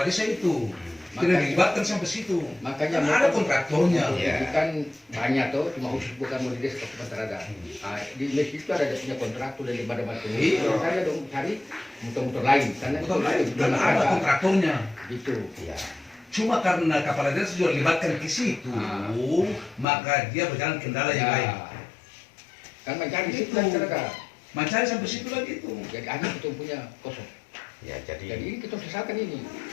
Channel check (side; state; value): right; drops out; at 19.9 s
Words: desa itu. Tidak dilibatkan sampai situ. Makanya Kan ada kontraktornya. Iya. itu kan banyak tuh, cuma khusus bukan mau di desa kabupaten ada. Ah, di Mesir itu ada dia punya kontraktor dari badan Iya. Kalau saya dong cari motor-motor lain karena Betul, dan ada kontraktornya. gitu. Ya. Cuma karena kepala desa juga dilibatkan ke situ, maka dia berjalan kendala yang lain. Kan mencari Itu. situ masyarakat. Mencari sampai situ lagi itu. Jadi akhirnya kita punya kosong. Ya Jadi jadi ini kita sesalkan ini.